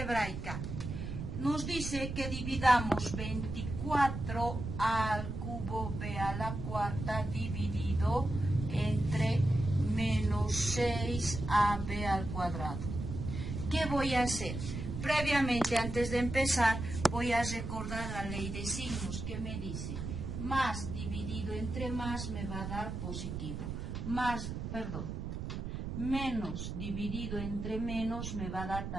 Nos dice que dividamos 24 al cubo b a la cuarta dividido entre menos 6ab al cuadrado. ¿Qué voy a hacer? Previamente, antes de empezar, voy a recordar la ley de signos que me dice más dividido entre más me va a dar positivo. Menos dividido entre menos me va a dar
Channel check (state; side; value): noise; right; rumble, 5 dB below the sound